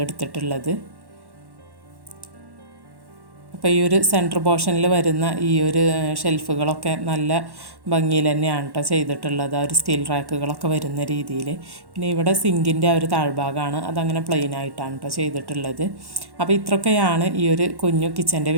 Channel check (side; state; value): left; late; 1.1 ms